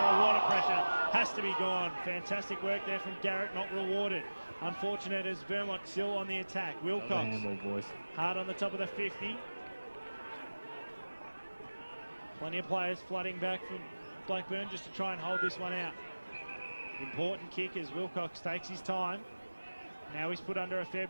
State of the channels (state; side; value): inverted; both; correlation -1.00